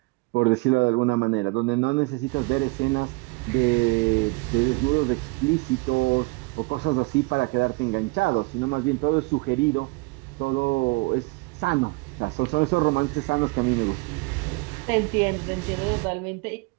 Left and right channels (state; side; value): quieter; left; 26.4 dB